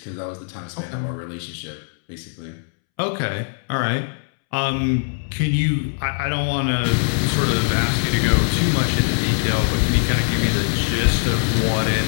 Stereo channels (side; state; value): right; silent; 65 dB below the other